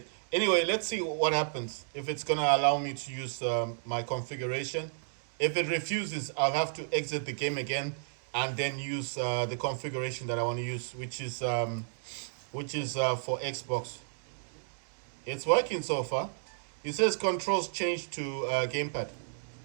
Anyway, let's see what happens if it's gonna allow me to use my configuration. If it refuses, I'll have to exit the game again and then use the configuration that I want to use, which is for Xbox. It's working so far. It says controls change to gamepad.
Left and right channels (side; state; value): left; silent; digital silence